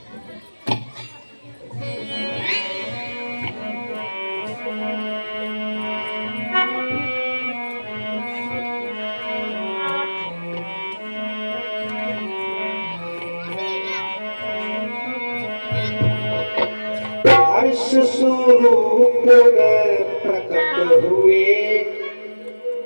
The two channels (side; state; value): both; inverted; correlation -1.00